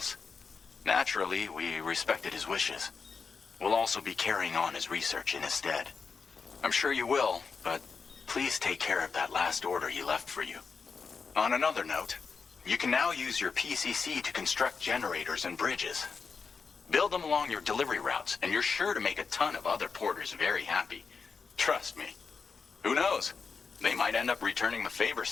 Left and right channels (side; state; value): right; quieter; 5.2 dB